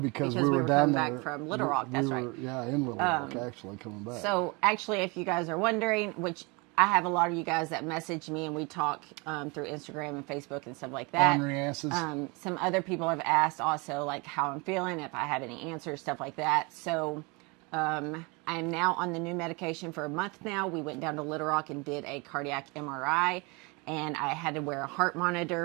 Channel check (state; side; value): quieter; left; 28.5 dB